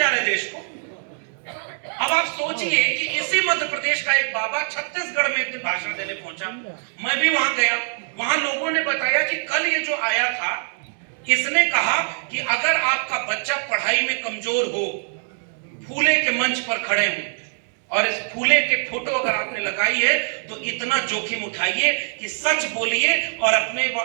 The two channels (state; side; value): silent; left; digital silence